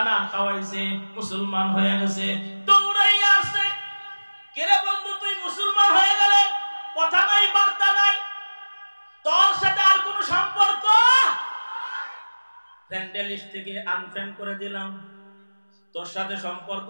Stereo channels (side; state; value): both; inverted; correlation -1.00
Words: খাওয়াইছে, মুসলমান হয়ে গেছে। দৌড়াইয়া আসছে, কেরে বন্ধু তুই মুসলমান হয়ে গেলে, কথা নাই বার্তা নাই, তোর সাথে আর কোনো সম্পর্ক, ফ্রেন্ড লিস্ট থেকে আনফ্রেন্ড করে দিলাম, তোর সাথে সম্পর্ক